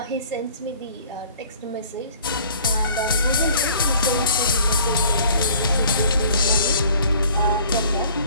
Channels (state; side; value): inverted; both; correlation -0.53